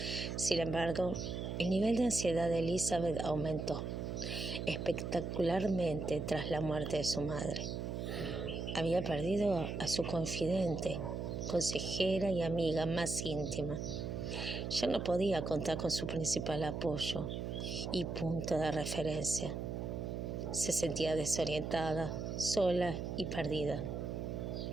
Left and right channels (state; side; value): noise; right; hum, 4 dB below the sound